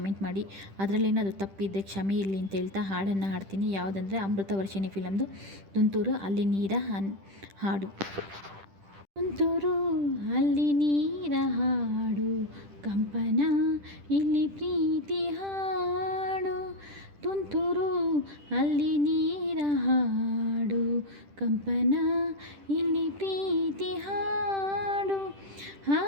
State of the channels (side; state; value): left; late; 10 ms